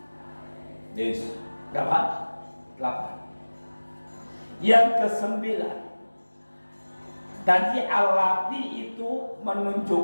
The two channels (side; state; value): both; inverted; correlation -1.00